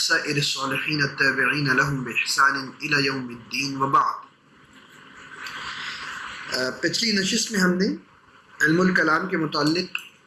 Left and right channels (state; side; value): identical; both; correlation 1.00